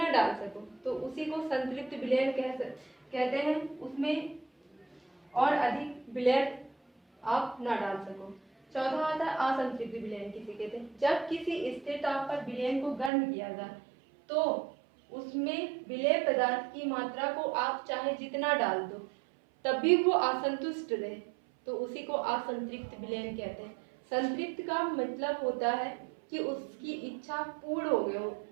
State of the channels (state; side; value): drops out; left; at 13.1 s